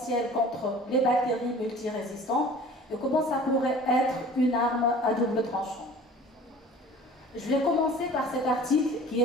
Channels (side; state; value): both; normal; correlation 0.45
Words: contre les bactéries multirésistantes et comment ça pourrait être une arme à double tranchant. Je vais commencer par cet article qui